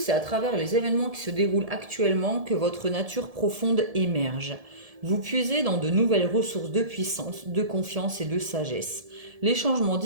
à travers les événements qui se déroulent actuellement que votre nature profonde émerge. Vous puisez dans de nouvelles ressources de puissance, de confiance et de sagesse. Les changements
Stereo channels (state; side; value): late; left; 1.7 ms